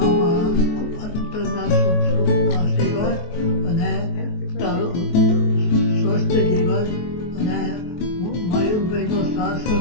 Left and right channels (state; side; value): late; right; 23 ms